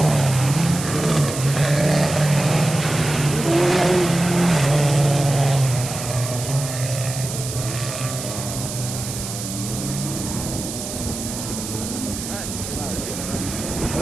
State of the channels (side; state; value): right; noise; hiss, 7 dB below the sound